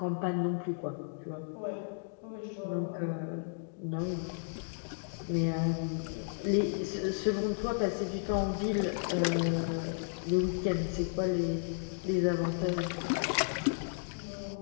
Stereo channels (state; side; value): silent; right; digital silence